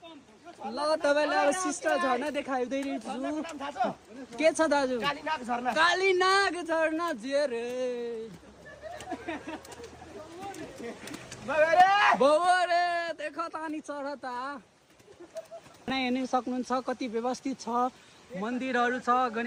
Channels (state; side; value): identical; both; correlation 1.00